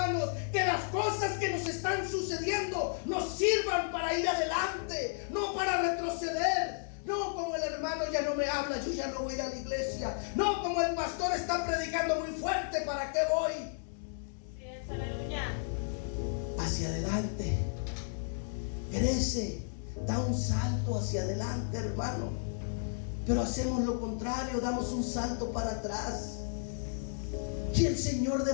Que las cosas que nos están sucediendo nos sirvan para ir adelante, no para retroceder. No como el hermano ya no me habla, yo ya no voy a ir a la iglesia. No como el pastor está predicando muy fuerte, ¿para qué voy? Así es, aleluya. hacia adelante, crece, da un salto hacia adelante, hermano. Pero hacemos lo contrario, damos un salto para atrás. Y el Señor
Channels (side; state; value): right; silent; digital silence